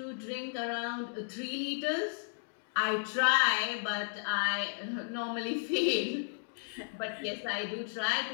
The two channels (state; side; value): silent; right; digital silence